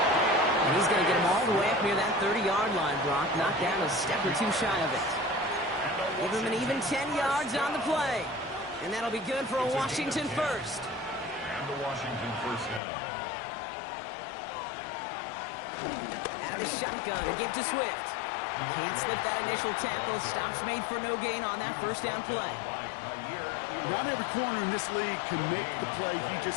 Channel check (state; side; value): drops out; right; at 12.8 s